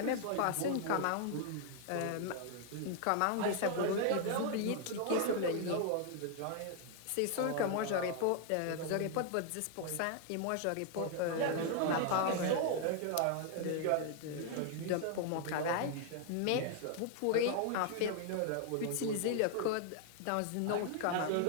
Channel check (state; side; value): different; both; correlation 0.00